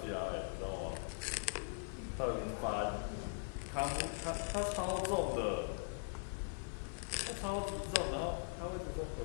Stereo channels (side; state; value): right; silent; digital silence